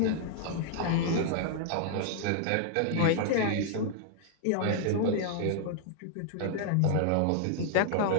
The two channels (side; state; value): both; different; correlation -0.01